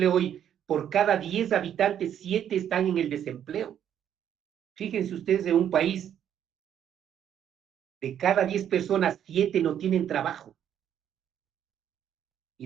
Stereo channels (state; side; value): quieter; left; 9.7 dB